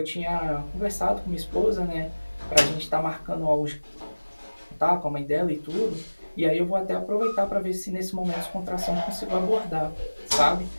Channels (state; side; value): inverted; both; correlation -1.00